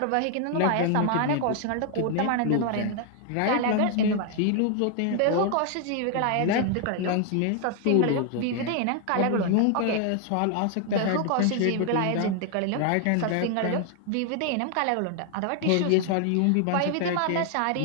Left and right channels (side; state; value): both; different; correlation 0.00